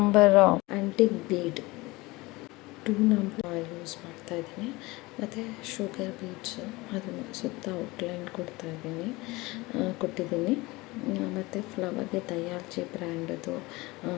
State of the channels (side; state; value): right; quieter; 22.1 dB